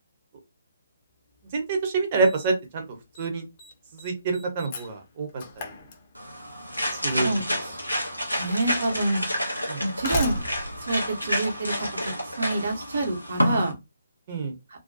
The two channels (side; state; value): both; inverted; correlation -0.77